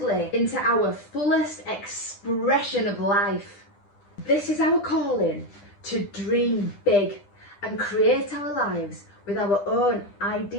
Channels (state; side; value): late; right; 10 ms